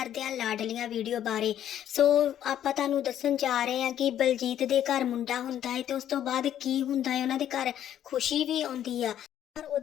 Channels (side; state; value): right; quieter; 10.8 dB